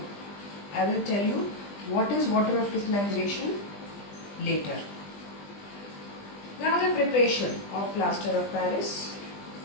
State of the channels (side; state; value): right; late; 20 ms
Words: I will tell you what is water of crystallization later. Now the preparation of plaster of Paris,